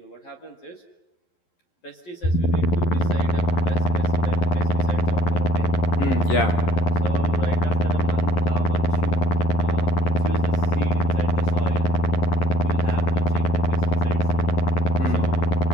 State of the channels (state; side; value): late; right; 11 ms